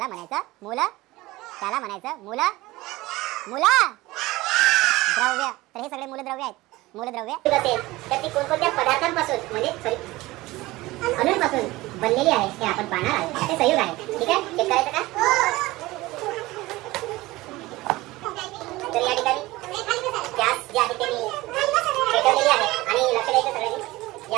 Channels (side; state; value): left; quieter; 19.4 dB